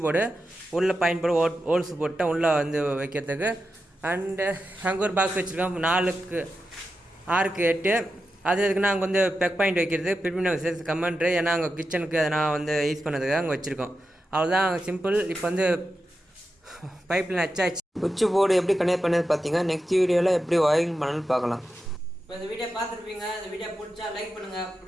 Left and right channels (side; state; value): both; normal; correlation 0.90